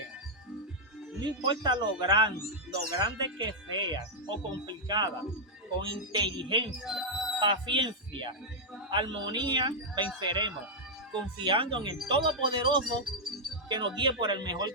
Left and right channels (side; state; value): both; normal; correlation -0.06